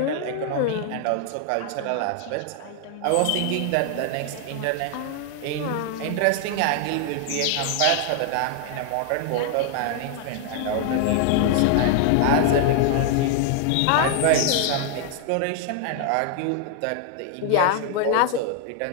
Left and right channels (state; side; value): different; both; correlation 0.00